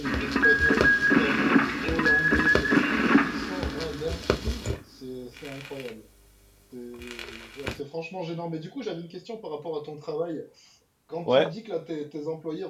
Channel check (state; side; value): identical; both; correlation 1.00